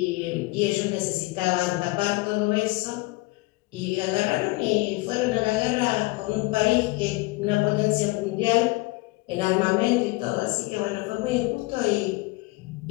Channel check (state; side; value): quieter; right; 22.6 dB